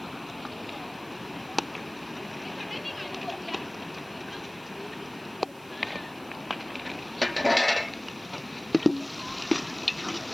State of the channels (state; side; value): noise; right; hiss, 23 dB below the sound